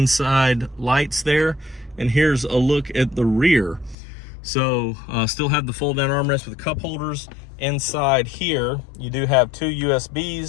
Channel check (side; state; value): right; drops out; at 4.0 s